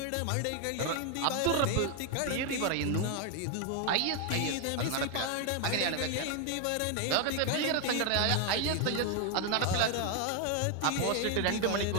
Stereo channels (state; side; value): different; both; correlation 0.01